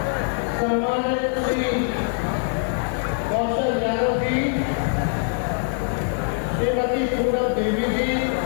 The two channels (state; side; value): silent; right; 63 dB below the other